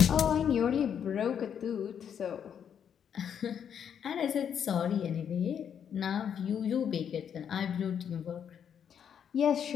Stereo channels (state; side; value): quieter; right; 8.3 dB